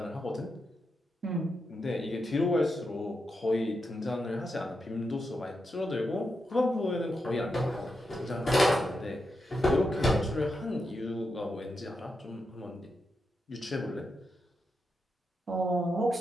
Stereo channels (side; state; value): both; normal; correlation 0.86